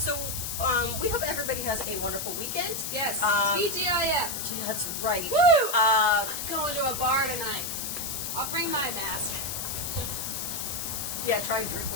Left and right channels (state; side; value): noise; left; hiss, 4 dB below the sound